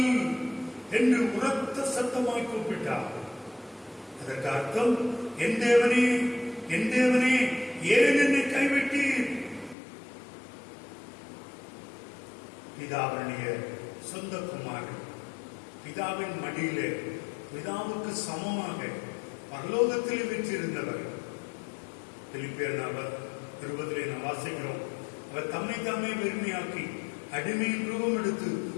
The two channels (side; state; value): right; drops out; at 9.8 s